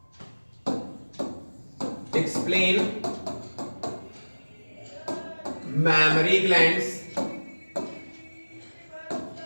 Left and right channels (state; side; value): inverted; both; correlation -1.00